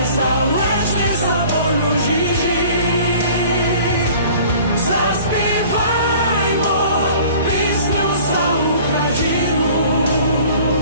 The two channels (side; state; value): both; inverted; correlation -0.48